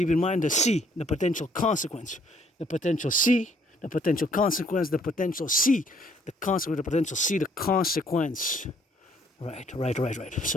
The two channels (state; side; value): normal; both; correlation 0.64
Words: in mind the C, the potential consequence, the potential C, the potential consequence, the potential C, the consequence, the potential C, the consequence. Right.